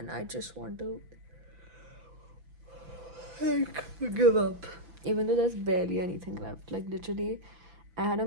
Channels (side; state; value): left; late; 6.0 ms